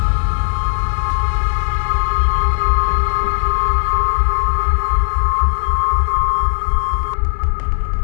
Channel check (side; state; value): right; silent; 69 dB below the other